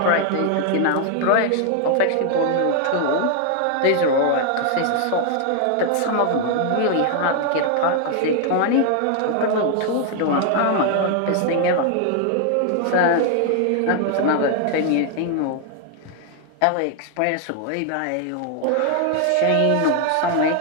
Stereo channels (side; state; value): both; different; correlation 0.00